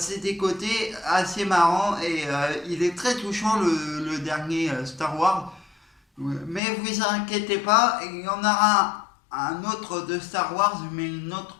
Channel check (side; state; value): right; drops out; at 6.6 s